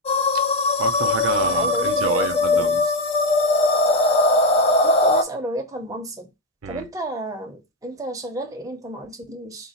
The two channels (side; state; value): both; normal; correlation 0.07